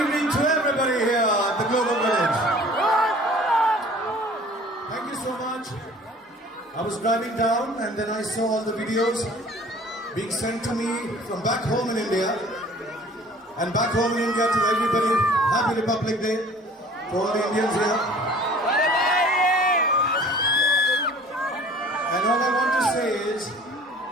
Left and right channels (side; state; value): both; normal; correlation 0.49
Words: to everybody here at the Global Village. Thank you so much. I was driving down and then I saw all the videos being sent to me from back home in India. And back home in India, to everybody, Happy Republic Day to all the Indians here. And all I want to say is,